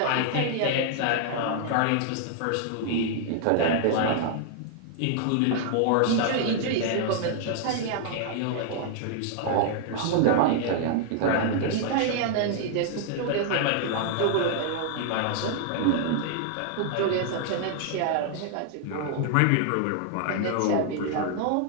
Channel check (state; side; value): different; both; correlation -0.01